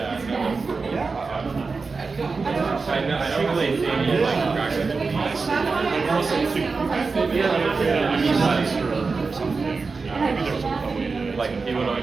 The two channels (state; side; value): quieter; left; 4.4 dB